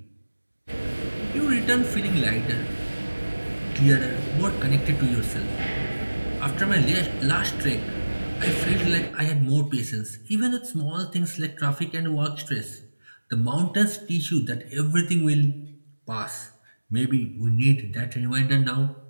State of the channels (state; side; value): inverted; both; correlation -1.00